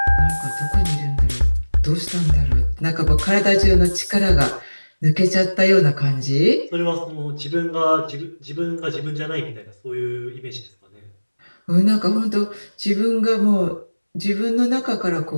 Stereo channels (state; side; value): inverted; both; correlation -1.00